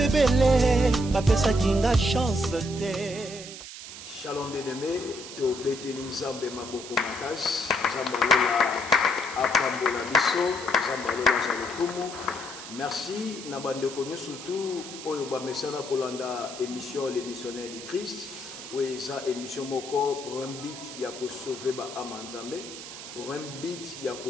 bapesa kinga chance te. Shalom bien-aimé, to beteli nzambe maboko makasi, nzambalola apambola biso, nzambalola zalokumu. Merci na bandeko surtout oyo ba mesana kolanda émission les missionnaires du Christ, oui ça émission moko pour un but ya ko sauver ba âme nzambe. Pour un but, il y a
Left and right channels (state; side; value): noise; right; hiss, 12 dB below the sound